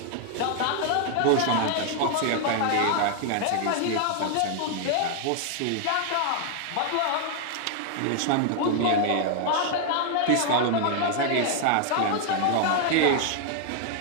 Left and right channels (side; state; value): both; different; correlation 0.00